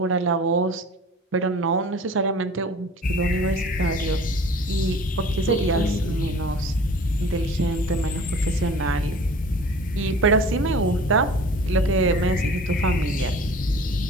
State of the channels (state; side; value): normal; both; correlation 0.45